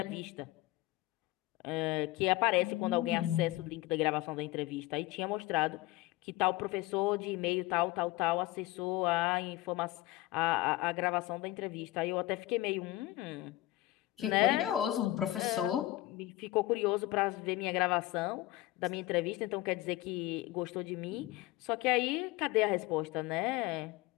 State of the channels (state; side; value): quieter; right; 17.4 dB